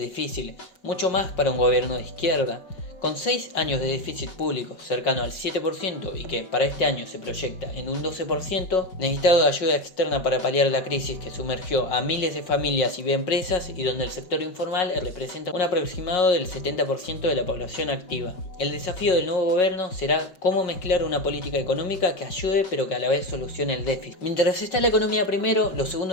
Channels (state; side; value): late; right; 5.5 ms